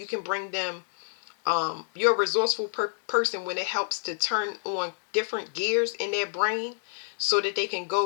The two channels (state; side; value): silent; right; digital silence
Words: can bring them you're a resourceful person when it helps to turn on different gears in their brain so that they can